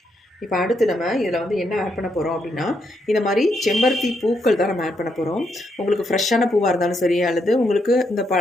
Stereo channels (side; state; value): both; normal; correlation 0.78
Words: இப்போ அடுத்து நம்ம இதில் வந்து என்ன ஆட் பண்ண போகிறோம் அப்படின்னா, இந்த மாதிரி செம்பருத்தி பூக்கள் தான் நம்ம ஆட் பண்ண போகிறோம். உங்களுக்கு ஃப்ரெஷ்ஷான பூவாக இருந்தாலும் சரி, அல்லது உங்களுக்கு